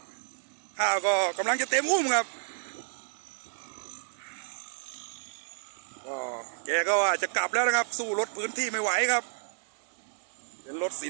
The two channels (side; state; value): left; silent; 57 dB below the other